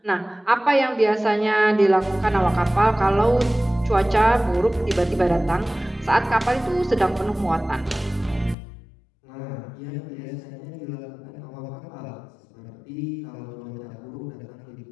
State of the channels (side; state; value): right; drops out; at 8.6 s